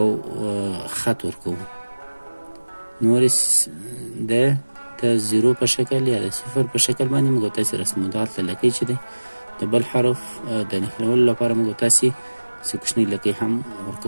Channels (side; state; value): both; inverted; correlation -1.00